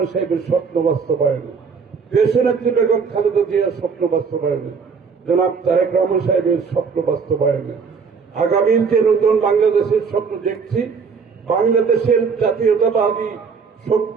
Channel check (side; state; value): left; quieter; 5.5 dB